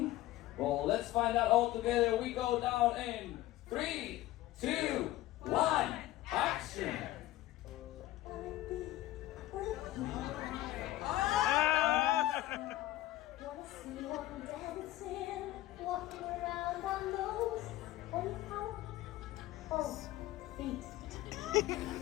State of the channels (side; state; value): right; quieter; 15.8 dB